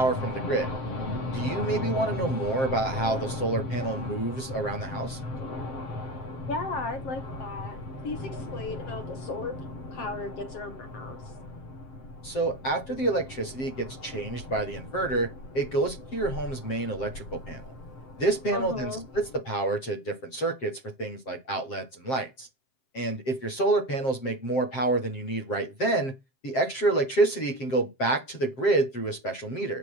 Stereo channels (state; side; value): late; right; 7.6 ms